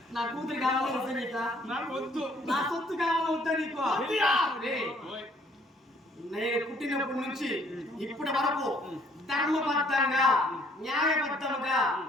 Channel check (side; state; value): both; normal; correlation 0.62